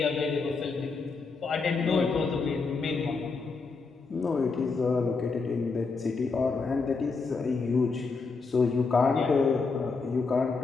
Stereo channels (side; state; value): right; quieter; 4.4 dB